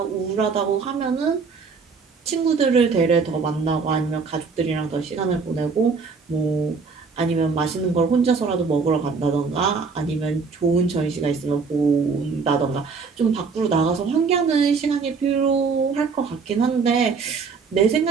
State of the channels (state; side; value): quieter; left; 5.0 dB